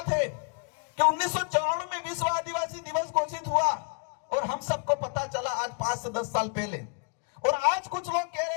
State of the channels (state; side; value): quieter; right; 37.3 dB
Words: है कि 1994 में विश्व आदिवासी दिवस घोषित हुआ और हम सबको पता चला आज 5 से 10 साल पहले, और आज कुछ लोग कह